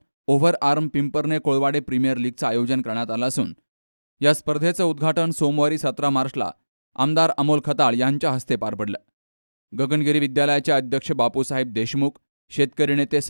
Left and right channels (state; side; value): inverted; both; correlation -1.00